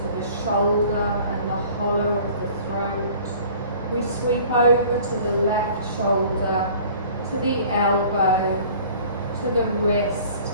the shoulder and the hollow of the throat. We sweep over to the left shoulder, to the elbow, to the wrist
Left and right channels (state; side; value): inverted; both; correlation -0.48